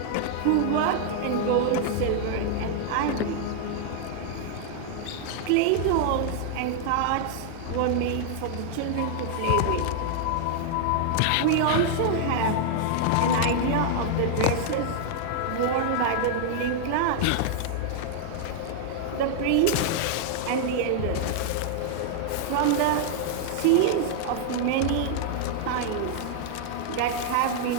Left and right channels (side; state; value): both; different; correlation 0.00